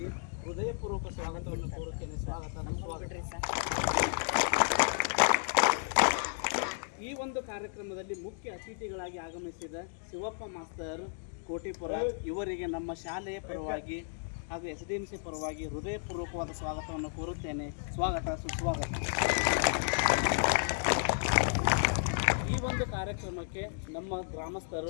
ಹೃದಯಪೂರ್ವಕ ಸ್ವಾಗತವನ್ನು ಕೋರುತ್ತೇನೆ. ಈ ಒಂದು ಕಾರ್ಯಕ್ರಮದಲ್ಲಿ ಮುಖ್ಯ ಅತಿಥಿಗಳಾಗಿ ಆಗಮಿಸಿದ ಶಿವಪ್ಪ ಮಾಸ್ತರ್ ಕೋಟಿಪುರ ಇವರಿಗೆ ನಮ್ಮ ಶಾಲೆಯ ಪರವಾಗಿ ಹಾಗೂ SDMC ಪರವಾಗಿ ಹೃದಯಪೂರ್ವಕವಾದ ಸ್ವಾಗತವನ್ನು ಕೋರುತ್ತೇನೆ. ಸ್ವಾಗತ, ಸುಸ್ವಾಗತ. ಈ ಒಂದು ಕಾರ್ಯಕ್ರಮಕ್ಕೆ ನಮ್ಮ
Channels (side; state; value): right; silent; digital silence